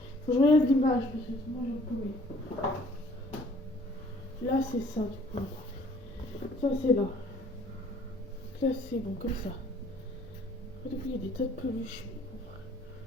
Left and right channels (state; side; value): normal; both; correlation 0.57